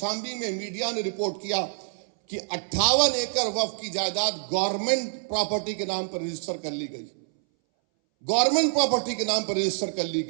میں میڈیا نے رپورٹ کیا کہ 58 ایکڑ وقف کی جائیداد گورنمنٹ پراپرٹی کے نام پر رجسٹر کر لی گئی، گورنمنٹ پراپرٹی کے نام پر رجسٹر کر لی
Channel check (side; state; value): left; silent; 60 dB below the other